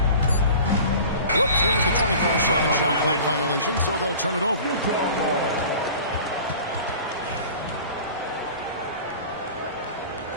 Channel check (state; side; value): inverted; both; correlation -0.41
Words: Whoops, there's the 24-second shot clock violation, so they'll turn it over.